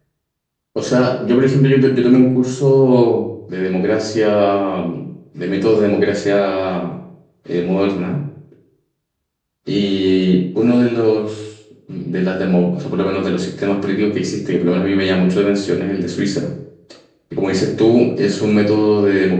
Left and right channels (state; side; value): identical; both; correlation 1.00